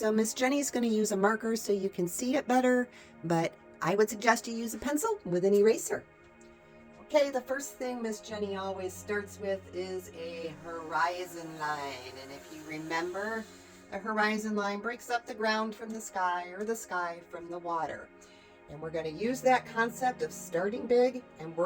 Miss Jenny's going to use a marker so you can see it better, but I would suggest you use a pencil with an eraser. Okay, the first thing Miss Jenny always starts with is a horizon line. And if you remember, a horizon line breaks up the ground from the sky or the sky from the water. And we're going to use that concept of starting big and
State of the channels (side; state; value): both; identical; correlation 1.00